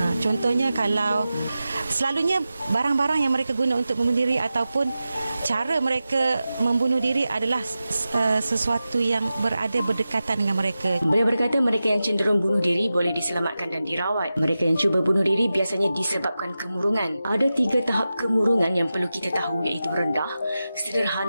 Contohnya kalau selalunya barang-barang yang mereka guna untuk membunuh diri ataupun cara mereka membunuh diri adalah sesuatu yang berada berdekatan dengan mereka. Beliau berkata mereka yang cenderung bunuh diri boleh diselamatkan dan dirawat. Mereka yang cuba bunuh diri biasanya disebabkan kemurungan. Ada 3 tahap kemurungan yang perlu kita tahu, iaitu rendah,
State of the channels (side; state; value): both; inverted; correlation -0.93